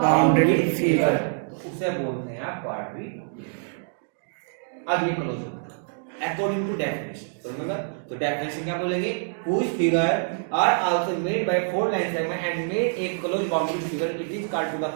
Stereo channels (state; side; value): silent; left; digital silence